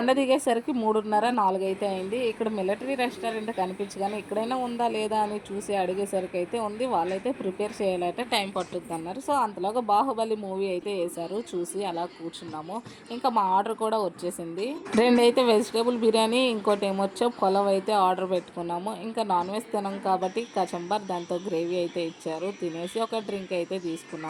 దిగేసరికి 3:30, 4 అయితే అయింది. ఇక్కడ మిలిటరీ రెస్టారెంట్ కనిపించగానే ఇక్కడైనా ఉందా లేదా అని చూసి అడిగేసరికి అయితే ఉంది. వాళ్ళైతే ప్రిపేర్ చేయాలంటే టైం పట్టుద్ది అన్నారు. సో అంతలోగా బాహుబలి మూవీ అయితే వేశారు. చూసి అలా కూర్చున్నాము. ఇంకా మా ఆర్డర్ కూడా వచ్చేసింది. 2 అయితే వెజిటేబుల్ బిర్యానీ, ఇంకోటి ఏమొచ్చో పొలవ్ అయితే ఆర్డర్ పెట్టుకున్నాము. ఇంకా నాన్ వెజ్ తినాం కాబట్టి కచంబర్ దాంతో గ్రేవీ అయితే ఇచ్చారు. తినేసి ఒక డ్రింక్ అయితే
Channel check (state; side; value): identical; both; correlation 1.00